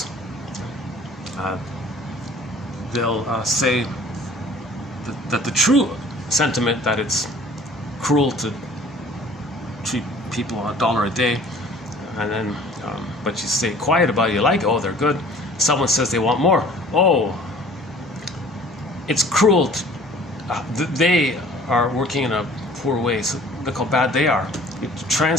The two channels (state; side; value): normal; both; correlation 0.50